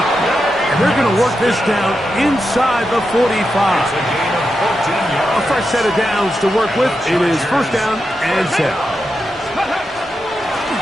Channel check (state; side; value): normal; both; correlation 0.88